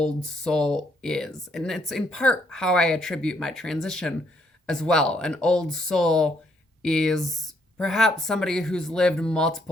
soul is. And it's in part how I attribute my transition as well. An old soul is perhaps somebody who's lived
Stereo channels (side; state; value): both; normal; correlation 0.71